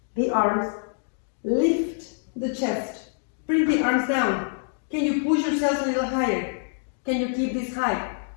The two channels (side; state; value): right; silent; digital silence